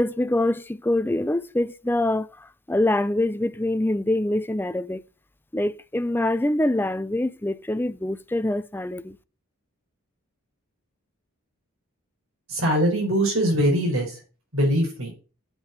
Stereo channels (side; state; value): both; normal; correlation 0.74